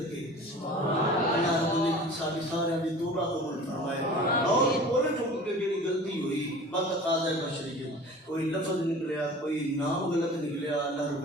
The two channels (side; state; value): both; normal; correlation 0.41